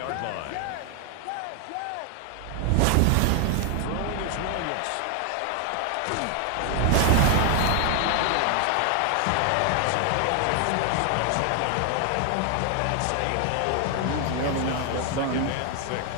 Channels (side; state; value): both; different; correlation 0.00